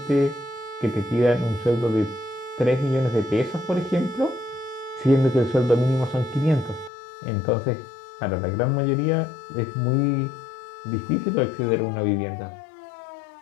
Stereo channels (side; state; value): right; drops out; at 6.9 s